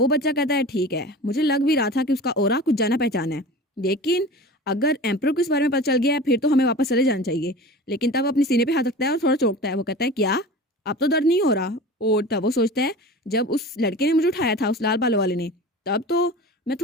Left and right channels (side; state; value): both; normal; correlation 0.35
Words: बच्चा कहता है ठीक है, मुझे लग भी रहा था कि उसका ओरा कुछ जाना पहचाना है, लेकिन अगर एम्पर को इस बारे में पता चल गया है फिर तो हमें वापस चले जाना चाहिए। लेकिन तब अपने सीने पे हाथ रखता है और थोड़ा चौंकता है। वो कहता है क्या, अब तो दर्द नहीं हो रहा। और तब वो सोचता है जब उस लड़के ने मुझे उठाया था, उस लाल बालों वाले ने, तब तो मैं